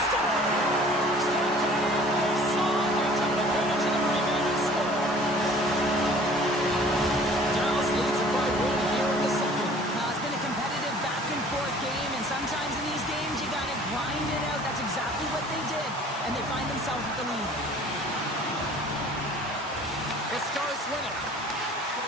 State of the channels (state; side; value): normal; both; correlation 0.50